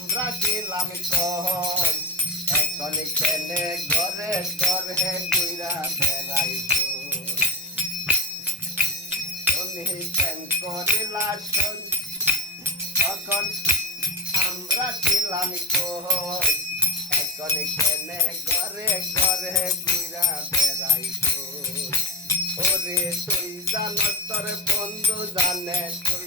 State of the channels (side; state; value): both; normal; correlation 0.16